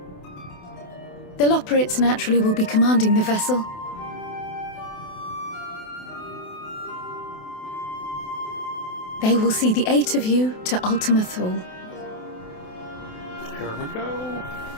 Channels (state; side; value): late; right; 28 ms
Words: The Loporrits naturally will be commanding the vessel. They will see the 8 of you to Ultima Thule. Here we go.